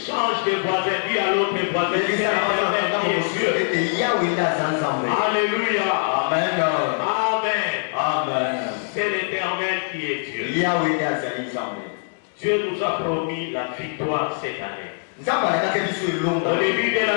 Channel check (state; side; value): silent; right; digital silence